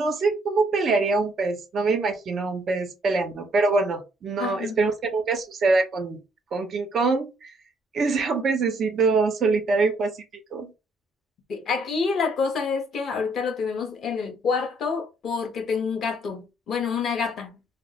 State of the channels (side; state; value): both; normal; correlation 0.67